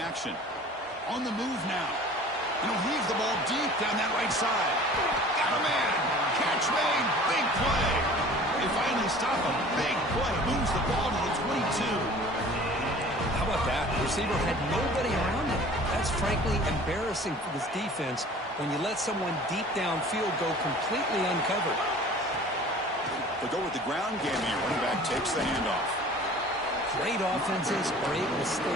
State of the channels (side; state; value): both; normal; correlation 0.46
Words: On the move now. And he'll heave the ball deep down that right side. Got a man. Catch made. Big play. They finally stop him. Big play. Moves the ball to the 22. How about that? The receiver had nobody around him. That's frankly embarrassing for this defense when you let someone deep downfield go completely uncovered. They go with the ground game here. Running back takes the handoff. Great offenses are able to